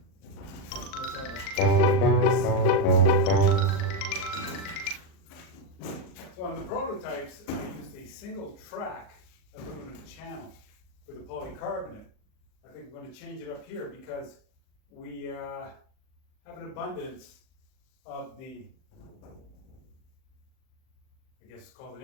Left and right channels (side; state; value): right; late; 38 ms